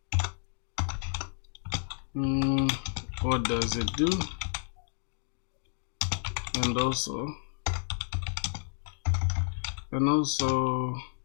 What does it do? And also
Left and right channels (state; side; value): silent; right; digital silence